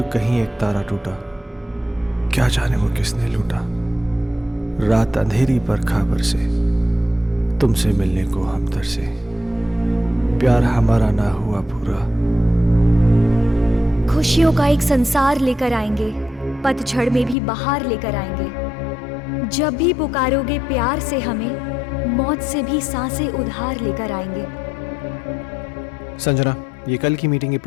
कहीं एक तारा टूटा, क्या जाने वो किसने लूटा। रात अंधेरी पर खबर से तुमसे मिलने को हम तरसे, प्यार हमारा ना हुआ पूरा। खुशियों का एक संसार लेकर आएंगे, पतझड़ में भी बहार लेकर आएंगे। जब भी पुकारोगे प्यार से हमें, मौत से भी सांसें उधार लेकर आएंगे। संजना, ये कल की मीटिंग के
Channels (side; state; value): right; drops out; at 17.4 s